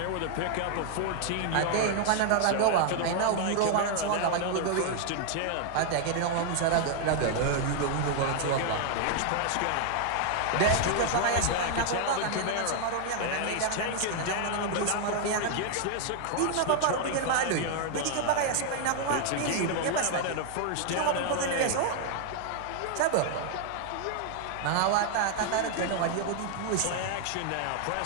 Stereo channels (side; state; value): both; different; correlation 0.00